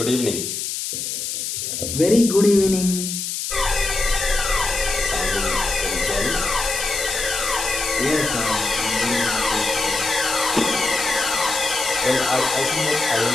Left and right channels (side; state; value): left; noise; hiss, 4 dB below the sound